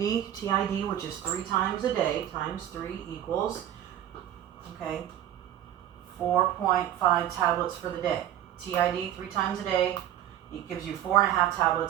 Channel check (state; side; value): quieter; left; 11.6 dB